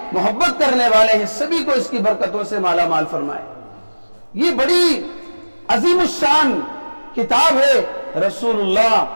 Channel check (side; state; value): both; inverted; correlation -1.00